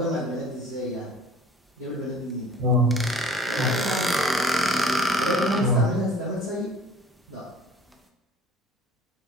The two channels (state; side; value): normal; both; correlation 0.48